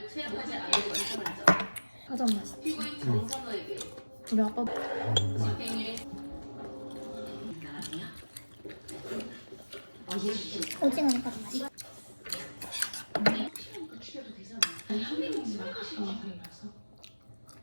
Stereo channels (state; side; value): inverted; both; correlation -1.00